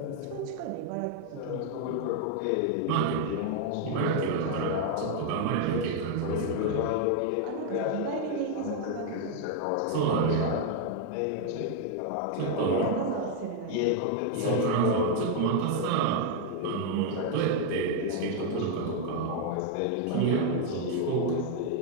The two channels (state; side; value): different; both; correlation 0.00